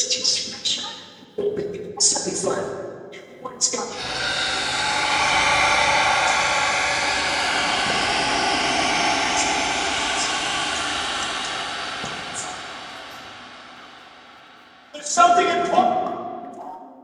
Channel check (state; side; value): identical; both; correlation 1.00